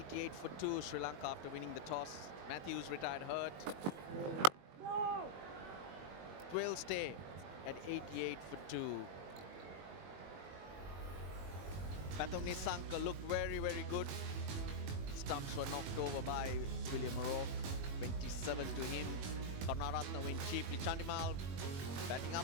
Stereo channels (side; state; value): left; late; 21 ms